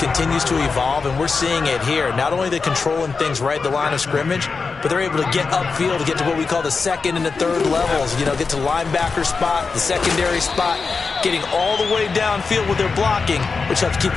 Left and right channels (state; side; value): quieter; right; 4.7 dB